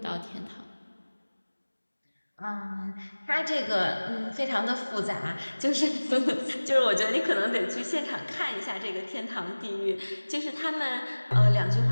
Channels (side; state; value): both; inverted; correlation -1.00